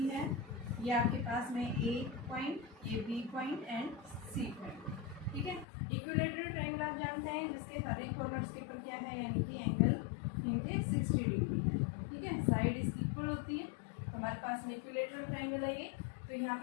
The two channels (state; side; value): drops out; right; at 5.7 s